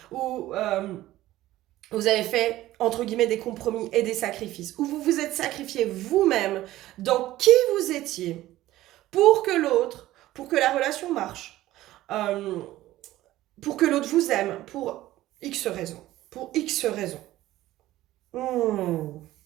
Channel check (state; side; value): quieter; left; 15.5 dB